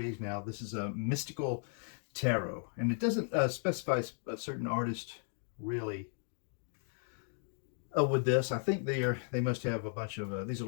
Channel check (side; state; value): right; silent; 54 dB below the other